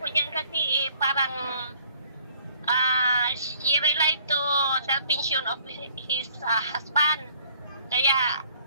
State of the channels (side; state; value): both; inverted; correlation -0.58